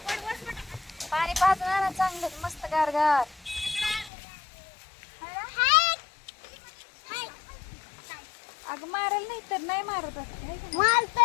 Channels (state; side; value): drops out; right; at 4.1 s